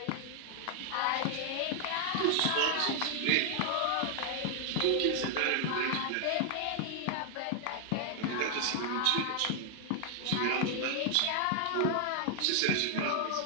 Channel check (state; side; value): different; both; correlation 0.00